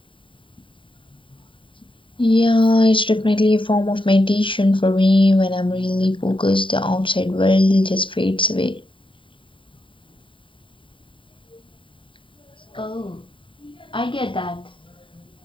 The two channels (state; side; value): late; right; 0.25 ms